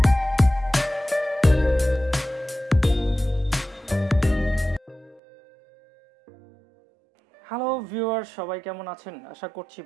viewers, সবাই কেমন আছেন? আশা করছি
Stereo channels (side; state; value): left; drops out; at 5.2 s